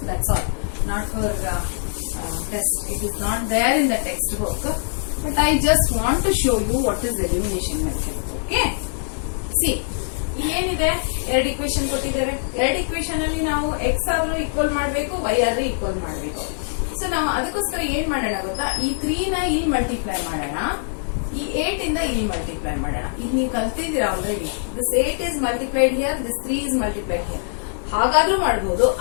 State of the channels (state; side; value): silent; right; 59 dB below the other